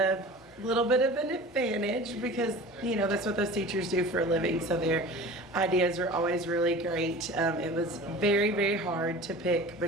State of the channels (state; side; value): normal; both; correlation 0.38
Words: little bit of an advantage because, you know, that's what those teachers do for a living, so their ideas are always really great. It was very, very hard to pick